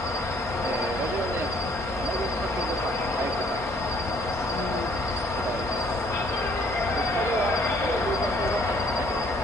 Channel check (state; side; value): normal; both; correlation 0.62